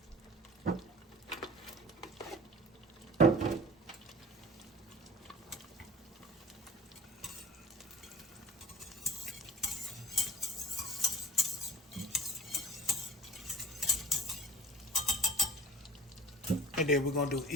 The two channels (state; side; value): normal; both; correlation 0.42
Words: And then we're gonna do